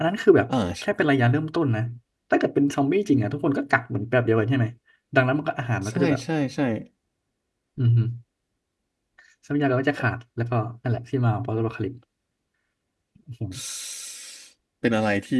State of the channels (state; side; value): identical; both; correlation 1.00